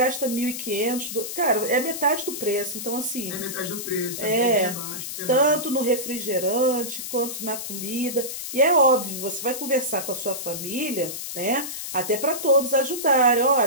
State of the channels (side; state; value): left; noise; hiss, 7 dB below the sound